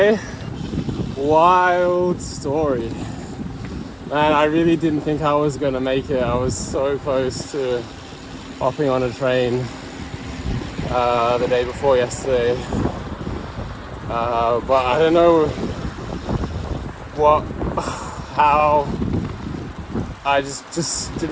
Wild story. Man, I really didn't think I was gonna make it. I was so close to hopping on a train the day before yesterday. But I don't know how I just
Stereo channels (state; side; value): identical; both; correlation 1.00